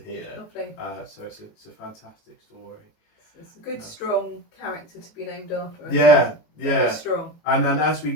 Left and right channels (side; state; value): right; late; 18 ms